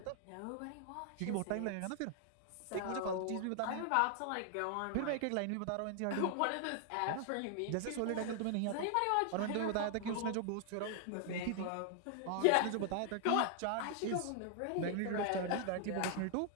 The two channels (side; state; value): both; different; correlation 0.00